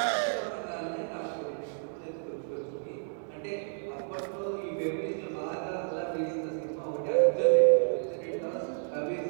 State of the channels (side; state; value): left; silent; digital silence